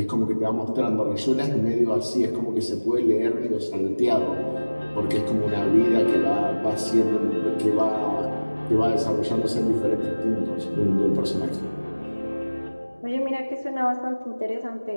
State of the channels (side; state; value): both; inverted; correlation -1.00